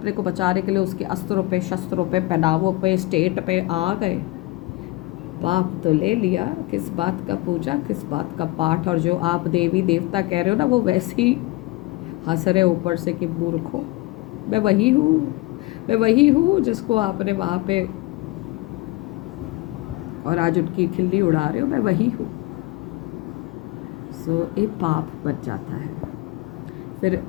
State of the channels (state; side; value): quieter; right; 20.5 dB